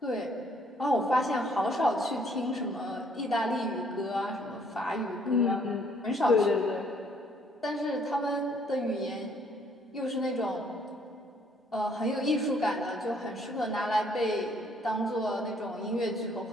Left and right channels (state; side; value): normal; both; correlation 0.64